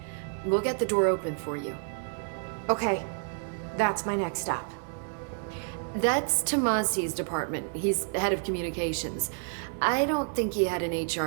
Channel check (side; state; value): left; silent; 58 dB below the other